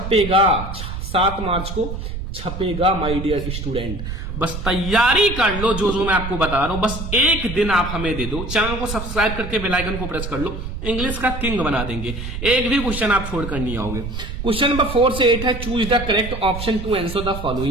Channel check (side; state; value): right; noise; rumble, 6 dB below the sound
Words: 7 मार्च को छपेगा माय डियर स्टूडेंट। बस तैयारी कर लो, जो जो मैं आपको बता रहा हूं, बस एक दिन आप हमें दे दो, चैनल को सब्सक्राइब करके बेल आइकन को प्रेस कर लो, इंग्लिश का किंग बना देंगे, एक भी क्वेश्चन आप छोड़कर नहीं आओगे। क्वेश्चन नंबर 4 से 8 है, choose the correct option to answer the